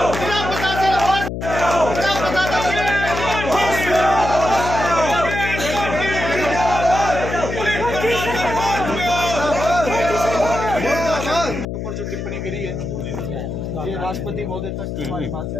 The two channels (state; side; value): noise; left; hum, 5 dB below the sound